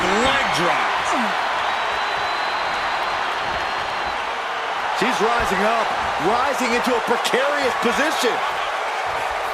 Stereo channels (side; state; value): both; identical; correlation 1.00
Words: leg drop. She's rising up, rising into a precarious position.